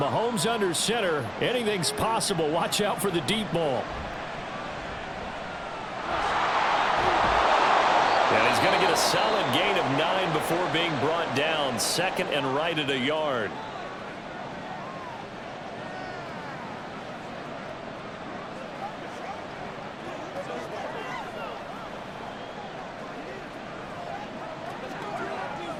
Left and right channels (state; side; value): identical; both; correlation 1.00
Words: under center, anything's possible. Watch out for the deep ball. And he's going to get a solid gain of 9 before being brought down. 2nd and right at a yard.